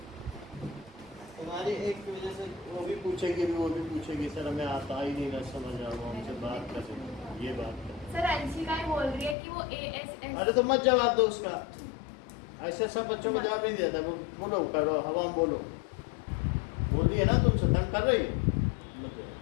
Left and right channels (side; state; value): right; drops out; at 9.3 s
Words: तुम्हारी एक की वजह से वो भी पूछेगी सर हमें आता ही नहीं ना समझ आ रहा, हमसे बात कर ये बात कर। सर अंशिका ही बोल रही है कि वो ASS अरे तो मत जवाब दो उसका, ऐसे सब बच्चों को जवाब नहीं दिया था। बोलो करो हवा में बोलो, बोल रही है ना तुमसे तंग कर रही है